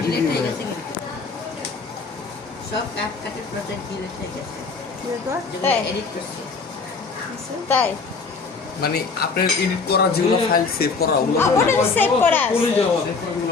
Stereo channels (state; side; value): quieter; right; 4.6 dB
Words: ডিলিট হয়ে গেছে কিন্তু সব ক্যাপকাটে প্রজেক্ট ডিলিট হয়ে গেছে যেগুলো এডিট করছি তাই মানে আপনার এডিট করা যেগুলো ফাইল সেভ করা ওগুলো ওটা সেভ করা আছে।